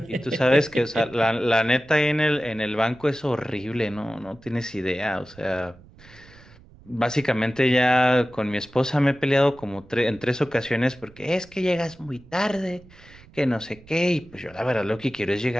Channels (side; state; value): right; noise; rumble, 23 dB below the sound